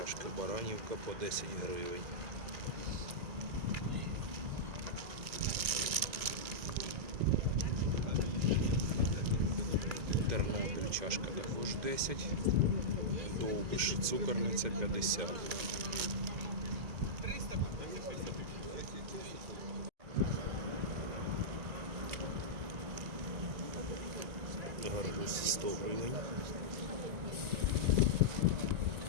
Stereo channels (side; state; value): left; late; 1.9 ms